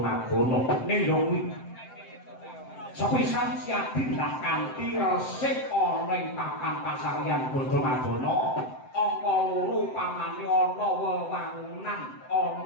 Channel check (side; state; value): right; late; 7.8 ms